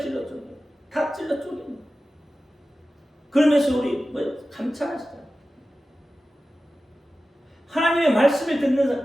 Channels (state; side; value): normal; both; correlation 0.95